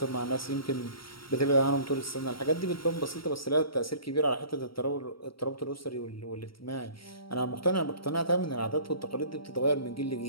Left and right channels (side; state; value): right; late; 0.74 ms